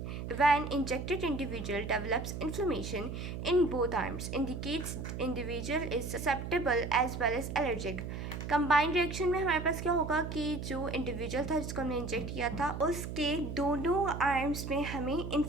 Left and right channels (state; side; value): noise; right; hum, 6 dB below the sound